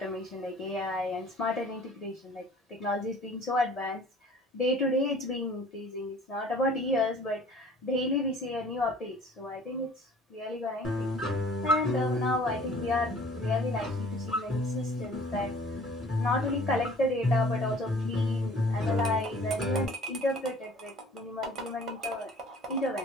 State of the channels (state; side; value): normal; both; correlation 0.50